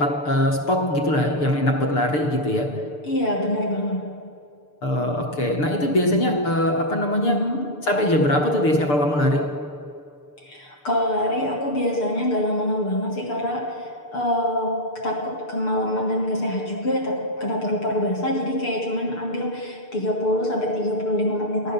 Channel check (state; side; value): late; right; 6.8 ms